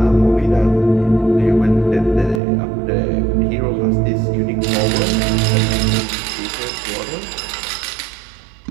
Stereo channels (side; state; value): left; drops out; at 2.4 s